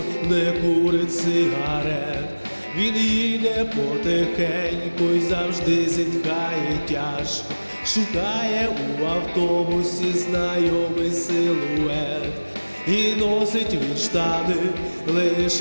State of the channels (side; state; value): both; inverted; correlation -1.00